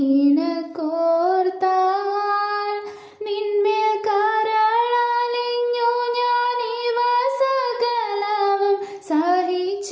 നിന്മേൽ കരളലിഞ്ഞു ഞാനിവ സകലവും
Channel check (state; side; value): identical; both; correlation 1.00